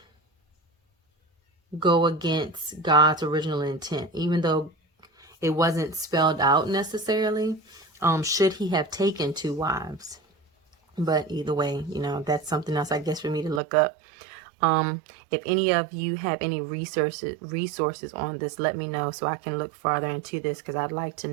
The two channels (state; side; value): drops out; left; at 13.6 s